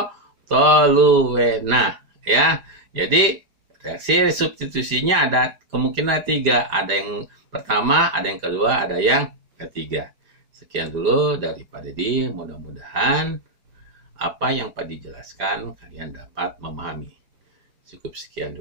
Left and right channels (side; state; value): left; late; 4.9 ms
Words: Ya. Jadi reaksi substitusinya ada kemungkinan 3. Ada yang pertama, ada yang kedua, ada yang ketiga. Sekian dulu dari Pak Dedi. Mudah-mudahan apa yang Pak dijelaskan kalian dapat memahami. Cukup sekian